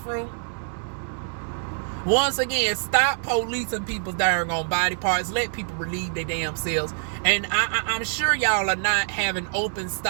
Once again, stop policing people's darn on body parts. Let people relieve their damn selves. And I'm sure y'all are not having open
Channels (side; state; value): left; silent; digital silence